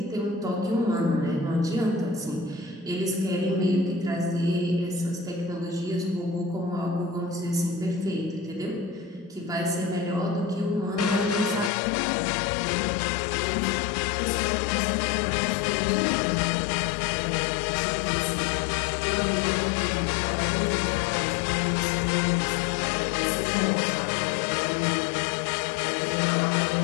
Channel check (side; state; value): right; drops out; at 11.7 s